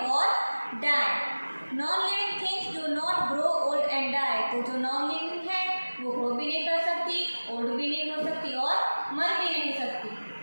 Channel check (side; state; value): both; inverted; correlation -1.00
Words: और डाई। नॉन लिविंग थिंग्स डू नॉट ग्रो ओल्ड एंड डाई। तो जो नॉन लिविंग है वो ग्रो भी नहीं कर सकती, ओल्ड भी नहीं हो सकती और मर भी नहीं सकती।